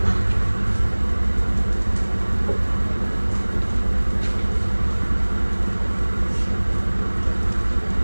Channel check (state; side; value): inverted; both; correlation -1.00